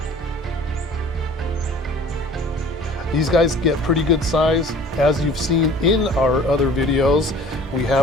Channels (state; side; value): normal; both; correlation 0.47